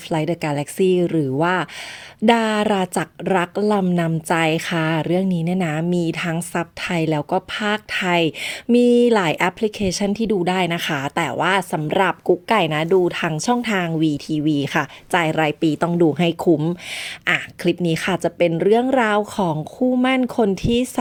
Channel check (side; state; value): both; identical; correlation 1.00